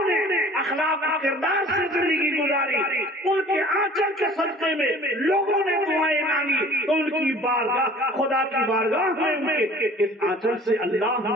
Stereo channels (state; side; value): normal; both; correlation 0.48